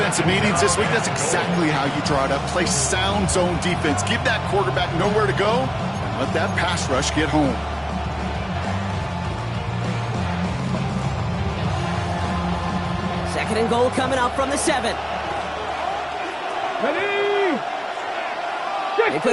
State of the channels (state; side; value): identical; both; correlation 1.00